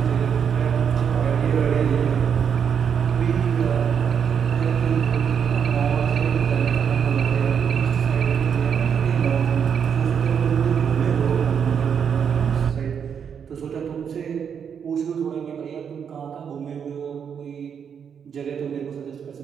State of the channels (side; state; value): left; quieter; 7.4 dB